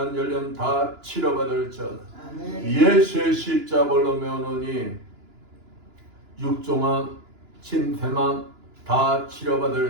열염 다 치료받을지어다. 예수의 십자벌로 면허니 육종암, 침샘암 다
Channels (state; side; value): late; left; 2.9 ms